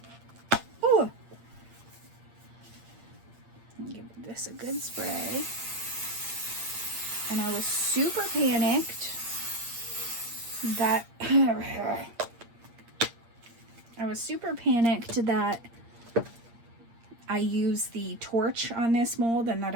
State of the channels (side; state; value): left; late; 8.6 ms